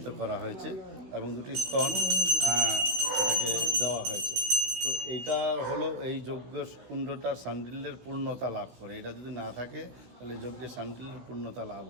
করা হয়েছে এবং দুটি স্তন এটাকে দেওয়া হয়েছে। তো এইটা হলো এই যজ্ঞ কুণ্ডটার সান্ডিল্যের পূর্ণতা লাভ করে। এটা যদি না থাকে তাহলে যজ্ঞের সান্ডিল্যের পূর্ণতা লাভ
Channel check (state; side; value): late; left; 16 ms